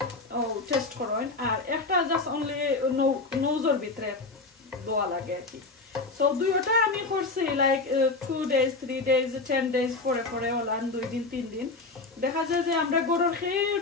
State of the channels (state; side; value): quieter; right; 3.5 dB